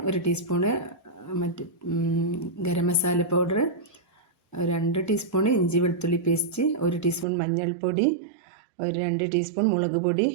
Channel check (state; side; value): drops out; left; at 7.2 s